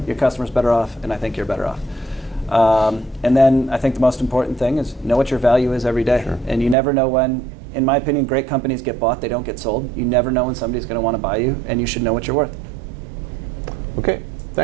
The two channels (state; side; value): drops out; left; at 6.8 s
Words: Your customer's better off, and I think you're better off. And then I think the most important thing is know what your value is every day. Sure. And you never know when, in my opinion, great companies get bought, they don't get sold. You never know when somebody's going to want to buy you, and you should know what you're worth. Okay.